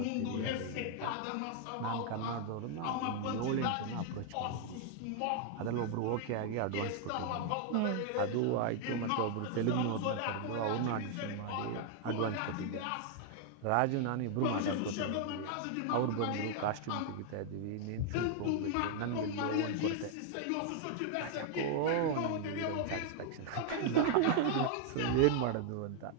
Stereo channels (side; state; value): both; different; correlation 0.00